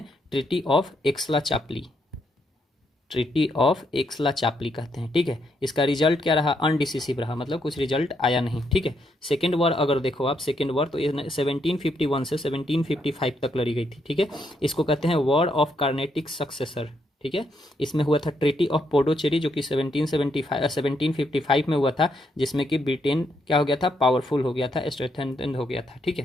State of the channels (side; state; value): both; normal; correlation 0.77